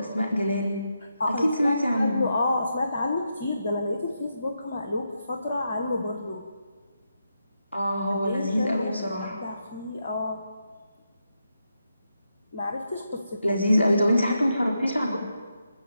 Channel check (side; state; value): both; inverted; correlation -0.84